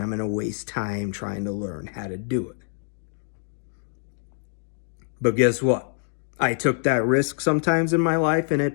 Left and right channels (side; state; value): right; silent; digital silence